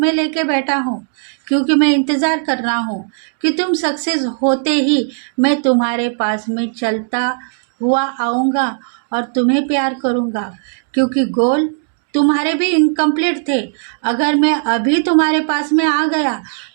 लेके बैठा हूँ क्योंकि मैं इंतज़ार कर रहा हूँ कि तुम सक्सेस होते ही मैं तुम्हारे पास में चलता हुआ आऊँगा और तुम्हें प्यार करूँगा, क्योंकि गोल तुम्हारे भी इनकम्प्लीट थे। अगर मैं अभी तुम्हारे पास में आ गया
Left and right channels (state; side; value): silent; left; digital silence